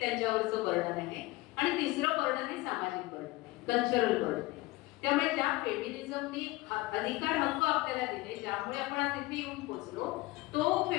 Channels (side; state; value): right; quieter; 20.3 dB